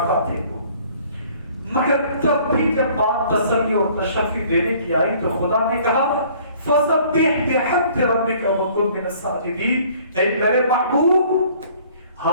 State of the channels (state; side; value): inverted; both; correlation -0.56